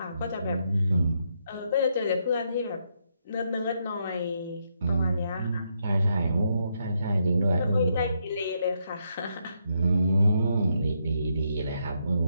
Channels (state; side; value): inverted; both; correlation -0.78